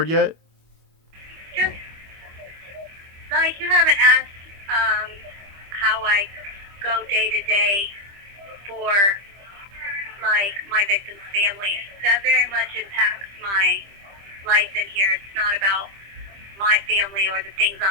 yet? Just you haven't asked how I go day to day for my victim's family. That very much impacts my life in here. It's not about my family or the things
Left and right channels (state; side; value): late; left; 25 ms